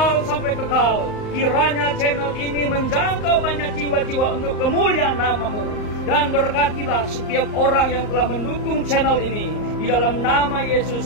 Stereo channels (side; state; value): right; late; 39 ms